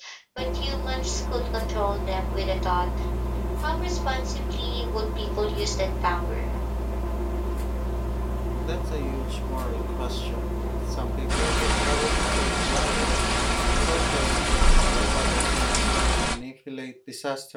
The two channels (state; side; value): identical; both; correlation 1.00